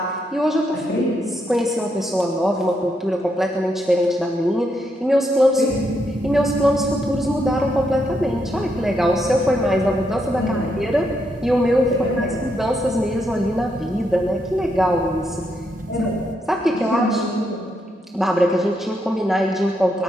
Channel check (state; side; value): normal; both; correlation 0.79